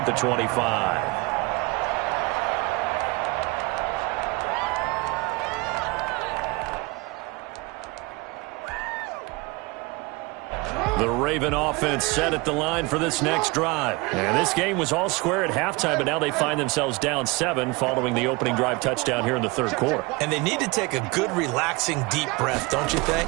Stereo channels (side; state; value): left; quieter; 25.0 dB